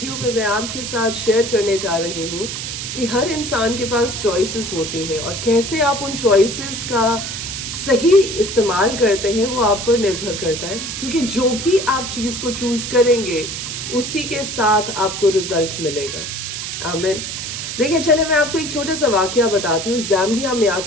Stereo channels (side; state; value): right; noise; hiss, 6 dB below the sound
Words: में मैं आपके साथ शेयर करने जा रही हूँ कि हर इंसान के पास चॉइसेस होती हैं और कैसे आप उन चॉइसेस का सही इस्तेमाल करते हैं वो आप पर निर्भर करता है, क्योंकि जो भी आप चीज़ को चूज करेंगे उसी के साथ आपको रिजल्ट मिलेगा। आमीन। देखिए, चले मैं आपको एक छोटा सा वाकया बताती हूँ। ज़ाम्बिया में आज